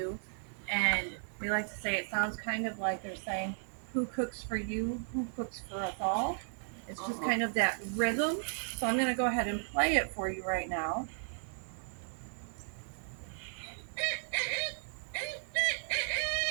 and we like to say it sounds kind of like they're saying, "Who cooks for you? Who cooks for us all?" It's just kind of that rhythm. So I'm going to go ahead and play it for you right now.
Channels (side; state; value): left; silent; 54 dB below the other